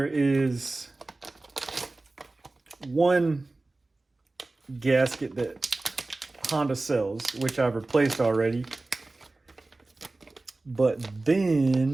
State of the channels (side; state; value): left; quieter; 3.1 dB